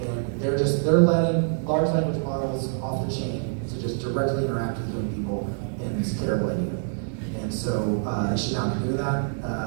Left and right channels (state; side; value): silent; left; digital silence